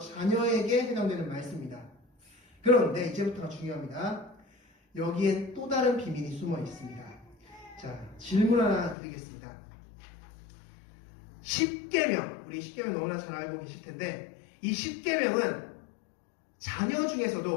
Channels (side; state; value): right; drops out; at 9.0 s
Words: 해당되는 말씀입니다. 그런데 이제부터가 중요합니다. 여기엔 또 다른 비밀이 숨어 있습니다. 자, 질문 하나 드리겠습니다. 10계명, 우리 10계명 너무나 잘 알고 계실 텐데 이 10계명은 자녀